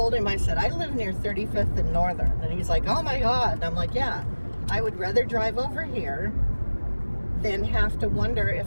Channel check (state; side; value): inverted; both; correlation -1.00